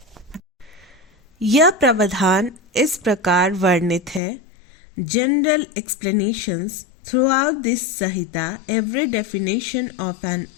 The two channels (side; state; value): right; drops out; at 4.2 s